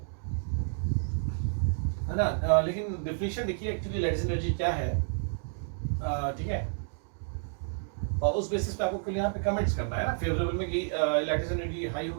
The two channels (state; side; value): silent; left; digital silence